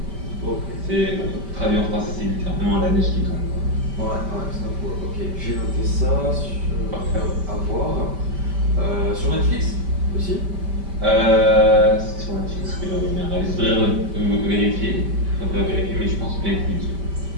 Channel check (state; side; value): late; left; 5.1 ms